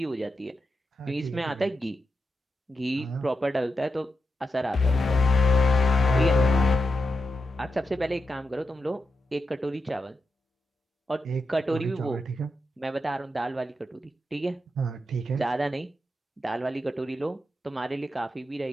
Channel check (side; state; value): both; normal; correlation 0.87